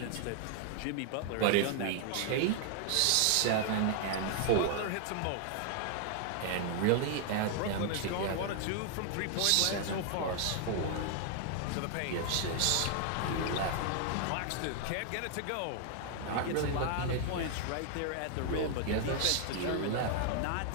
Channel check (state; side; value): different; both; correlation 0.00